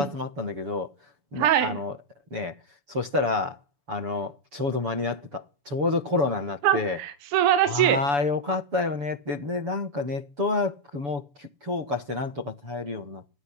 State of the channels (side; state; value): left; late; 7.0 ms